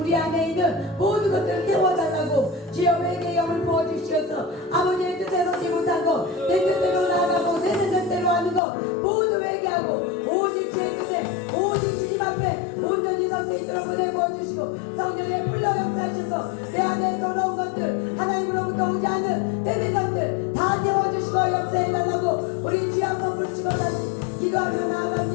안에 있는 모든 것들을 태워달라고 주여 회개의 영을 부어주시어서 아버지의 뜻대로지 못한 거내 뜻대로 나아가고 내 뜻대로 하는 거 모두 회개하고 오직 주의 뜻에 오직 주님 앞에 온전히 설 수 있도록 은혜 부어주시고 성령의 불러 역사하셔서 내 안에 돌아온 것들 하나님으로부터 오지 않는 때린 것들 다 태워주시고 역사해달라고 우리 주여 한번 불치고 다시 기도하며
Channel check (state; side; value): drops out; right; at 8.6 s